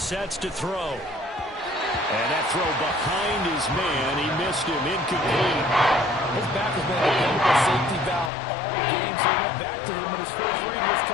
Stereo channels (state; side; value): drops out; right; at 8.3 s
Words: to throw. And that throw behind his man, he missed him, incomplete. His back has been a dependable safety valve all game, so he went back to him when his first read was